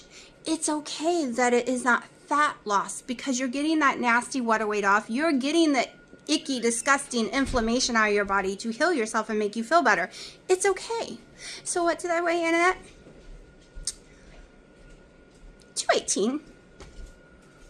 it's okay that it is not fat loss because you're getting that nasty water weight off. You're getting the icky, disgusting inflammation out of your body to heal yourself and make you feel better. It's okay. So what did I weigh in at? 218.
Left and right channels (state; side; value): identical; both; correlation 1.00